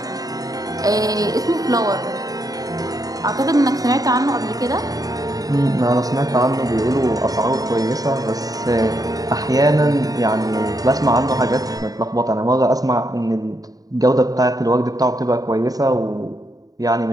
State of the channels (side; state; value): left; late; 0.18 ms